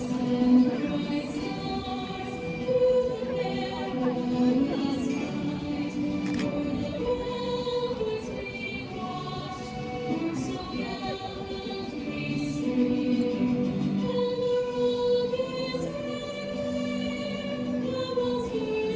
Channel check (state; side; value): identical; both; correlation 1.00